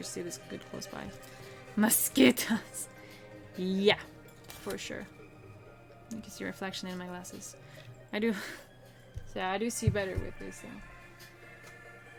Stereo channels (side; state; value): both; identical; correlation 1.00